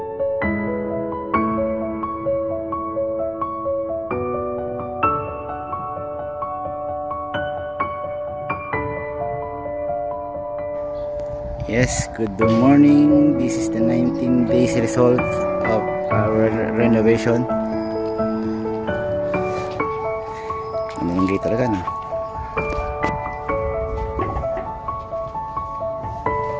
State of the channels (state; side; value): identical; both; correlation 1.00